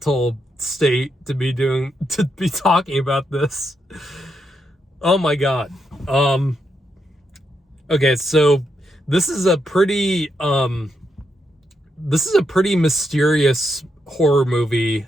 state to be talking about this. Oh my god. Okay, so this is a pretty mysterious horror movie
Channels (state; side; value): normal; both; correlation 0.81